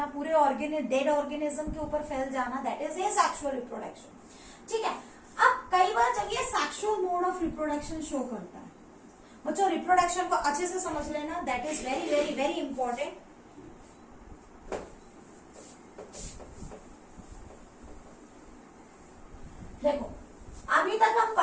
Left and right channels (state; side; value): identical; both; correlation 1.00